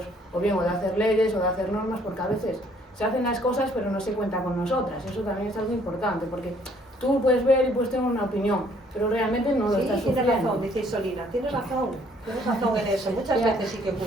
o bien o de hacer leyes o de hacer normas, porque a veces se hacen las cosas pero no se cuenta con nosotras. Eso también es algo importante, porque tú puedes ver y puedes tener una opinión, pero realmente no lo estás sufriendo. Tienes razón, dice Solina, tienes razón en eso, muchas veces sí que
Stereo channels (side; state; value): both; normal; correlation 0.63